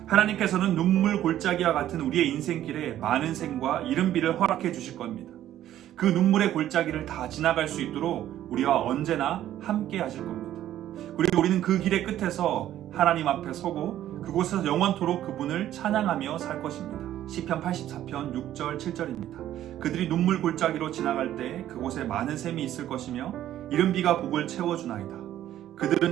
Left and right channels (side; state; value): left; quieter; 12.3 dB